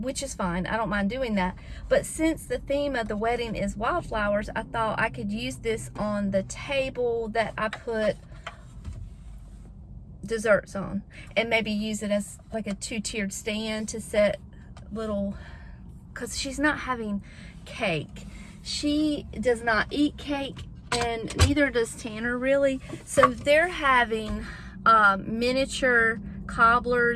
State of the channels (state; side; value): identical; both; correlation 1.00